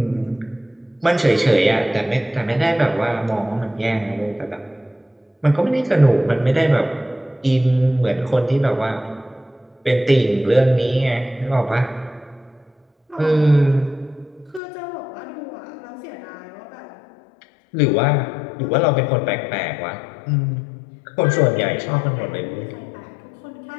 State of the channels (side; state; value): right; drops out; at 14.6 s